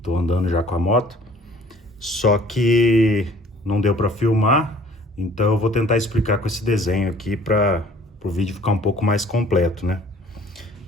tô andando já com a moto. Só que não deu para filmar, então eu vou tentar explicar com esse desenho aqui para o vídeo ficar um pouco mais completo, né?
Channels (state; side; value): normal; both; correlation 0.54